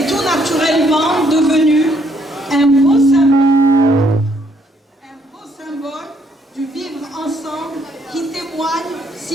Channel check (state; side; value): normal; both; correlation 0.69